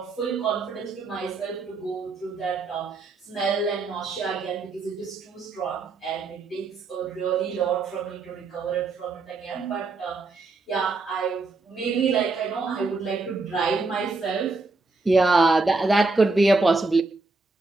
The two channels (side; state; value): left; quieter; 3.8 dB